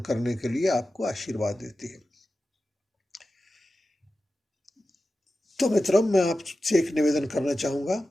के लिए आपको आशीर्वाद देती है। तो मित्रों, मैं आपसे एक निवेदन करना चाहूँगा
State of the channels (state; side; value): normal; both; correlation 0.93